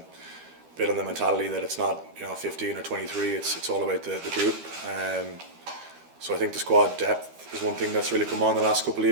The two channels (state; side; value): late; left; 12 ms